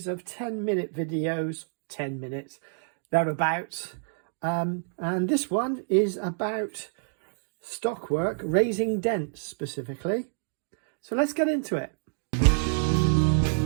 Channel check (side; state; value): left; silent; digital silence